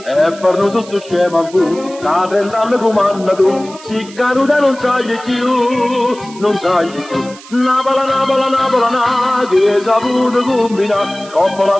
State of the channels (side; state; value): right; noise; hiss, 19 dB below the sound